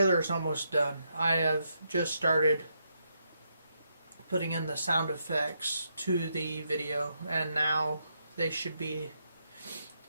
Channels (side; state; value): both; inverted; correlation -0.80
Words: is almost done. I have just started putting in the sound effects to the video, and now they should be.